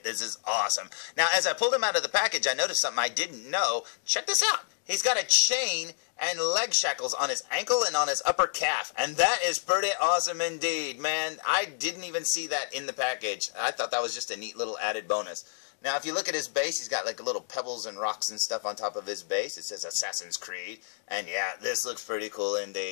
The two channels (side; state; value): right; silent; digital silence